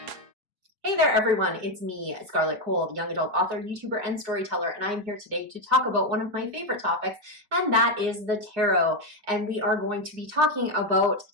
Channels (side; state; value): left; late; 4.8 ms